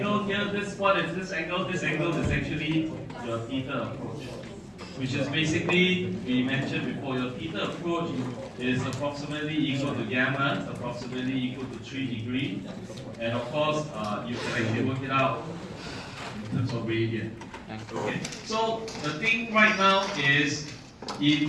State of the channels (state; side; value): identical; both; correlation 1.00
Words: here, what is this angle? This angle is actually your theta approach, which is basically, we mentioned before, your theta approach is approximately equal to gamma, approximately equal to 3 degrees. And of course, you can actually work it out in terms of radian. Okay, so the thing right now is, if